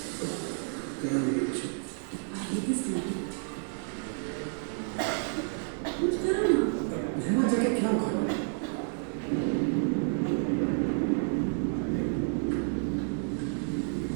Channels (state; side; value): silent; left; 58 dB below the other